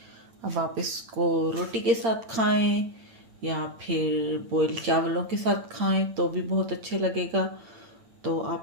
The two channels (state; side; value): late; left; 8.8 ms